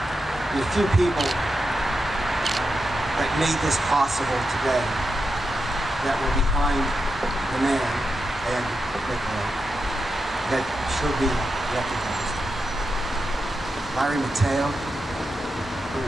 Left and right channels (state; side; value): normal; both; correlation 0.88